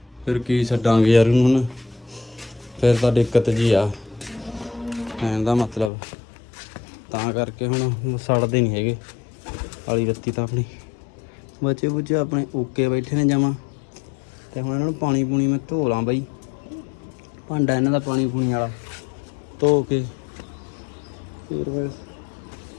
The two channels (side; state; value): right; drops out; at 5.9 s